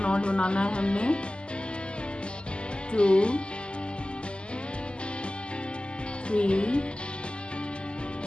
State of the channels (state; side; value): late; right; 0.051 ms